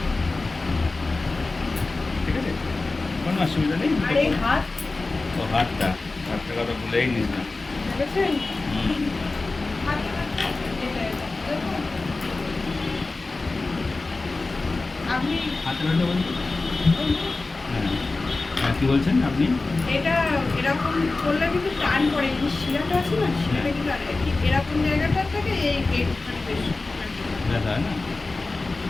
ঠিক আছে, কোনো অসুবিধা নেই। ও হাতটা, হাতটা কথা ভুলেই নিস না। হুম। হাতে ব্যথা বলতে? হ্যাঁ হ্যাঁ, কী বলছেন আপনি? এটা এরকম করলে কিন্তু টান পড়ে, এই শিরাটা আছে না, শিরাটা কিন্তু ঠিক এরকম জায়গাটা থেকে এইখানে বেশি ব্যথা হয় না?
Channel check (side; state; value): right; quieter; 3.5 dB